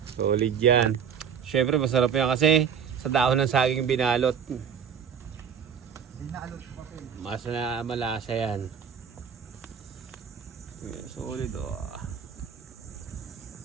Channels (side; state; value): left; quieter; 7.5 dB